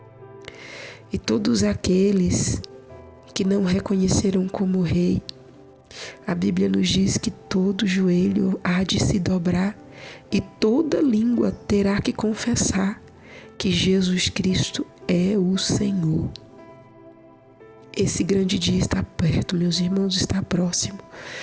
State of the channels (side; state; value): both; identical; correlation 1.00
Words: E todos aqueles que não reconheceram como rei, a Bíblia nos diz que todo joelho há de se dobrar e toda língua terá que confessar que Jesus Cristo é o Senhor. Esse grande dia está perto, meus irmãos, está próximo.